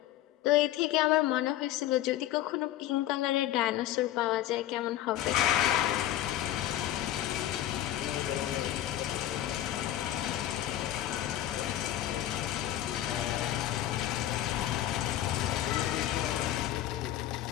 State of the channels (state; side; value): quieter; right; 13.0 dB